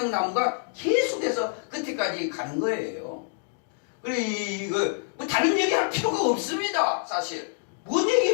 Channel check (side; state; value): right; silent; digital silence